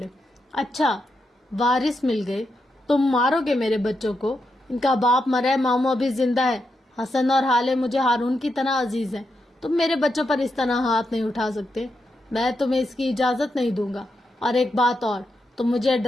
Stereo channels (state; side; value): normal; both; correlation 0.85